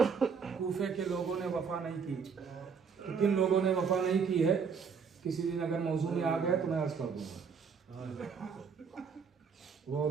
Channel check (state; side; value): quieter; left; 6.0 dB